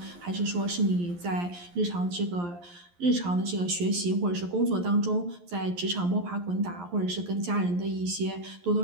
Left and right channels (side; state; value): left; late; 11 ms